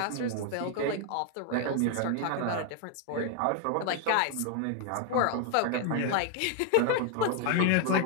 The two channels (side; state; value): both; different; correlation 0.00